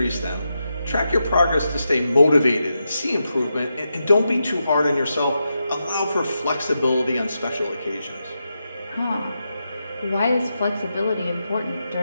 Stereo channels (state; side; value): inverted; both; correlation -0.87